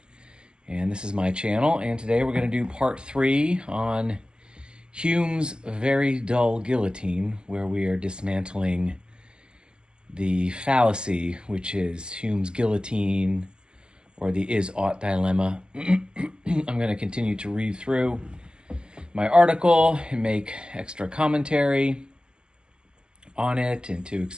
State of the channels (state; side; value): late; left; 0.048 ms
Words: And this is my channel, and today we're going to do part 3 on Hume's very dull guillotine, where we are dismantling the fallacy, which is Hume's guillotine, or the is-ought dilemma. I'm going to continue to read through my article and make extra commentary on it and to